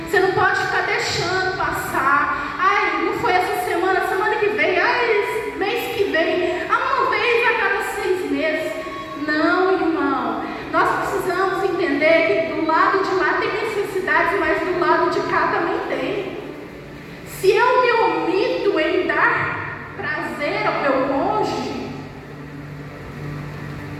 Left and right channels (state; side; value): identical; both; correlation 1.00